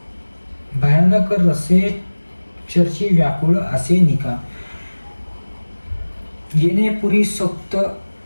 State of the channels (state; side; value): inverted; both; correlation -1.00